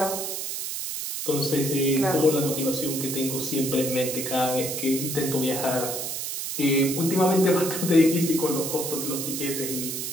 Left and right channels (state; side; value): noise; right; hiss, 4 dB below the sound